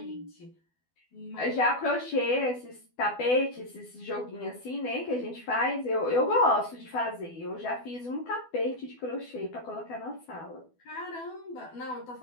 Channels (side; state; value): right; late; 12 ms